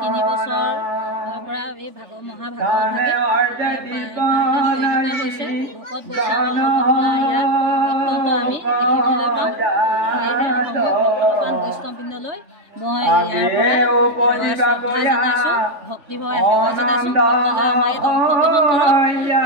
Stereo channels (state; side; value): late; left; 3.2 ms